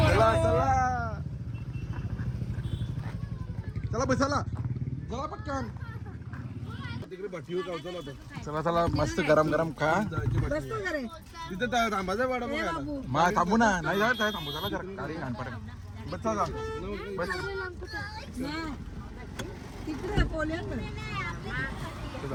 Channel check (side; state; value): both; identical; correlation 1.00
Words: चला चला बसायला चला पटकन. तिकडे भट्टीवर गावचा होता. चला चला मस्त गरम गरम खा. तिथे थांबायचा वडापाव. मा थांबू ना. नाही जात थांबू. चला जरा गाडी घाण पडेल. बस चला बस.